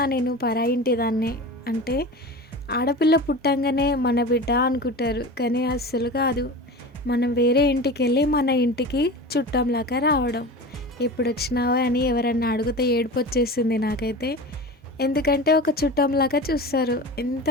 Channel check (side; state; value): both; normal; correlation 0.32